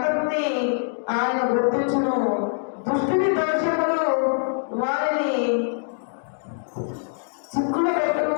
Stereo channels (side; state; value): right; silent; digital silence